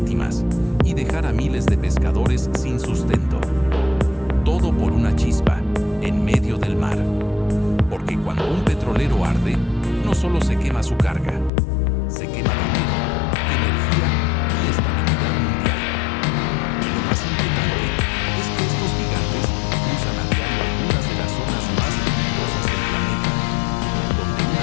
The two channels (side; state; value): right; drops out; at 11.5 s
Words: y dejar a miles de pescadores sin sustento. Todo por una chispa en medio del mar. Porque cuando un petrolero arde, no solo se quema su carga, se quema dinero, energía y estabilidad mundial. Y lo más inquietante es que estos gigantes cruzan a diario algunas de las zonas más peligrosas del planeta, donde un